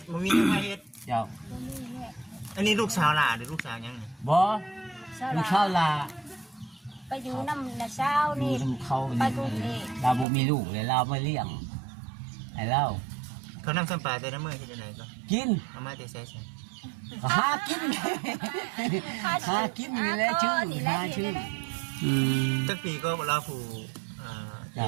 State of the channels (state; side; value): drops out; left; at 10.2 s